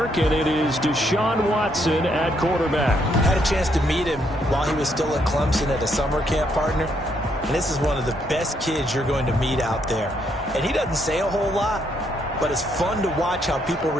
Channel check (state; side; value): normal; both; correlation 0.74